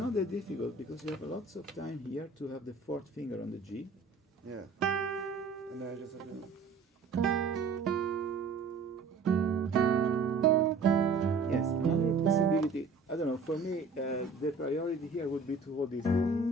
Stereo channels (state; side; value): quieter; left; 4.4 dB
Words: that difficult because you have lots of time here to have the fourth finger on the G. Yeah. And then I just have to. Yes, another possibility, I don't know, for me, the priority here would be to hold this.